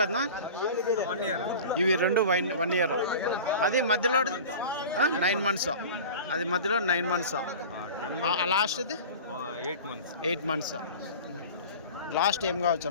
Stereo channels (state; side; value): inverted; both; correlation -0.36